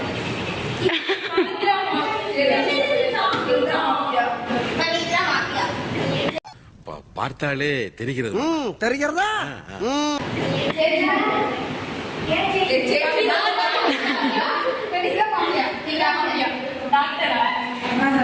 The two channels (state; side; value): identical; both; correlation 1.00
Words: பார்த்தாலே தெரிகிறது. தெரிகிறதா?